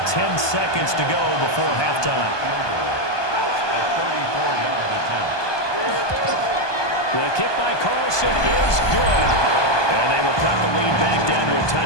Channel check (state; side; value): late; right; 1.2 ms